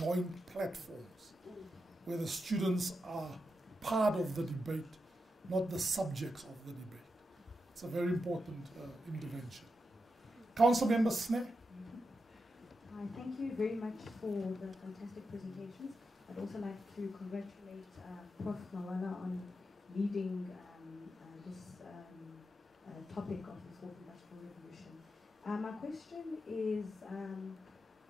platforms where the students are part of the debate, not the subjects of the debate. It's a very important intervention. Council Member Sneh. Thank you very much for the fantastic presentations. I'd also like to congratulate Prof. Mawala on leading this topic of the Fourth Industrial Revolution. My question is,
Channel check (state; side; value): normal; both; correlation 0.87